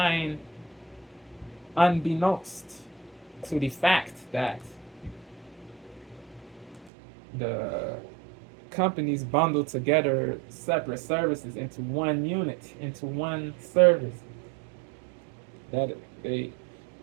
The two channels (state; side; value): drops out; left; at 6.9 s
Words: unbeknownst to the fact that the companies bundle together separate services into one unit, into one service. That they